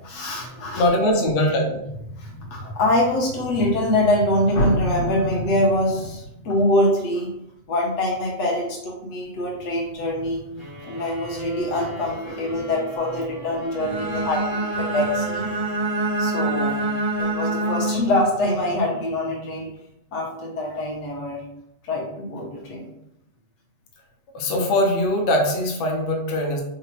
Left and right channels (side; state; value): right; late; 7.9 ms